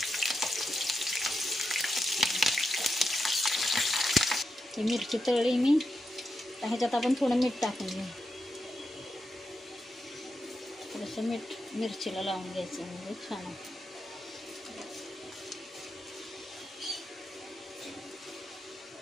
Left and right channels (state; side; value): normal; both; correlation 0.87